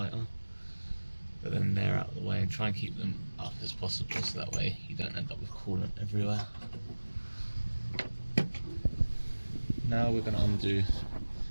but then they're out of the way, and try and keep them up as possible so that way you don't end up with coolant everywhere. Now we're going to undo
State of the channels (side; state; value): both; inverted; correlation -1.00